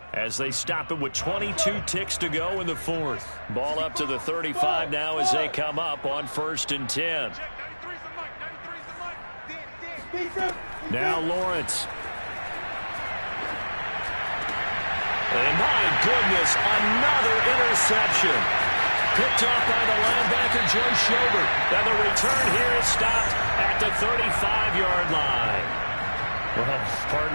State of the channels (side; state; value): both; inverted; correlation -1.00